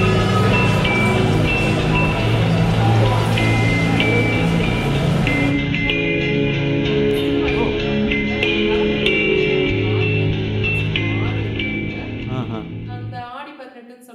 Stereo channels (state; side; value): identical; both; correlation 1.00